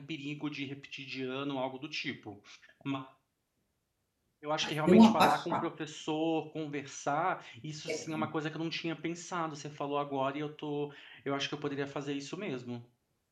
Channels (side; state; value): both; identical; correlation 1.00